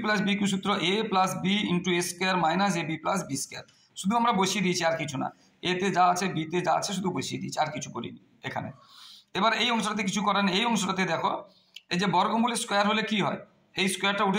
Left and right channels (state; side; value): identical; both; correlation 1.00